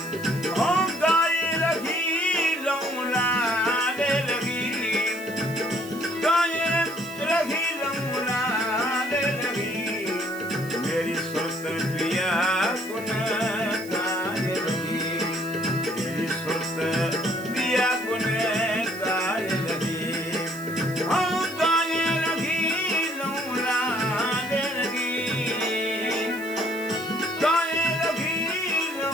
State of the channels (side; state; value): right; noise; hiss, 17 dB below the sound